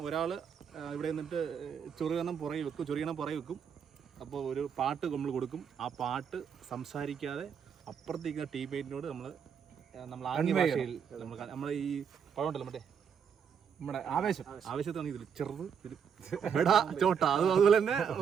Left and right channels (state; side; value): quieter; left; 7.3 dB